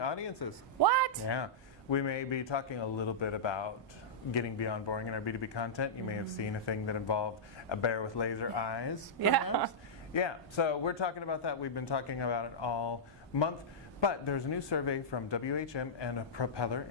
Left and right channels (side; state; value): both; normal; correlation -0.12